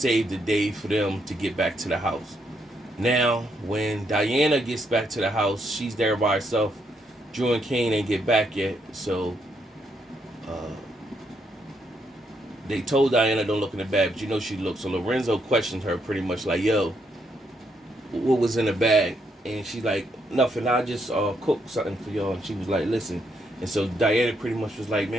the day for them to get back to the house. Now, when Diana gets back to the house, she's there by herself. Drew and Kane ain't get back yet, so they told Diana don't look in the bag, but she looked. So Lorenzo questioned her pretty much like, yo, what was in the bag? And she's like, nothing, I just cooked something for y'all. And she was like, listen. And so Diana pretty much was like,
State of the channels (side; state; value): both; normal; correlation 0.76